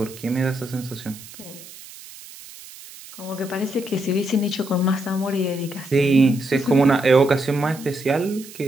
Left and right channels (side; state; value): right; noise; hiss, 17 dB below the sound